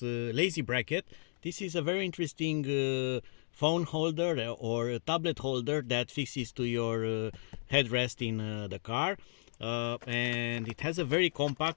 Lazy Bracket. This is a very interesting phone holder or a tablet holder that fixes to your headrest in the car, and it has a very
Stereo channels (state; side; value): silent; right; digital silence